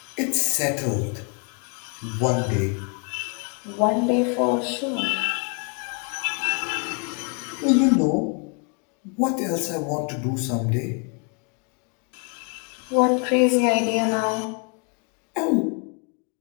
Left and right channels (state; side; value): quieter; right; 38.4 dB